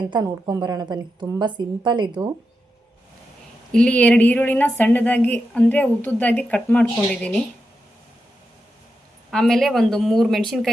ಅಂತ ನೋಡ್ಕೊಂಬರೋಣ ಬನ್ನಿ. ತುಂಬ ಸಿಂಪಲ್ ಇದು. ಇಲ್ಲಿ 2 ಈರುಳ್ಳಿನ ಸಣ್ಣದಾಗಿ ಅಂದರೆ ಉದ್ದುದ್ದಾಗಿ ಕಟ್ ಮಾಡ್ಕೊಂಡಿದ್ದೀನಿ. ಆಮೇಲೆ ಒಂದು 3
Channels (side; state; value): both; normal; correlation 0.88